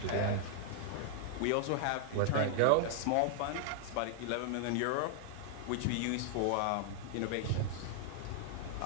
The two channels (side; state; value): both; different; correlation -0.01